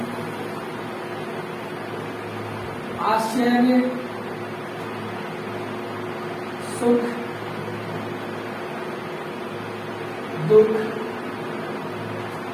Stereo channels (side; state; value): both; identical; correlation 1.00